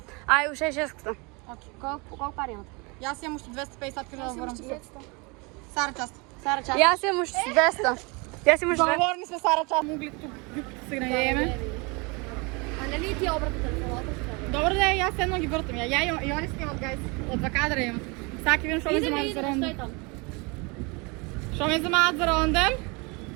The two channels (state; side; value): quieter; left; 28.9 dB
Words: Ај, уште 600. Колко пари имате? Јас имам уште 250 кажа да ворам. Сара, част. Сара, част. Јас имам уште 200. Јас имам уште 200. Договорни сме, Сара, част. Могли тук се гнајеме. А нали ти обратно телефоната? Добро да е, јас едно ги вртам. Ја и они снимат, гайс. Од 2 кадра имам. Саки видам што ме замаат за ронден. там. Што ме замаат за ронден?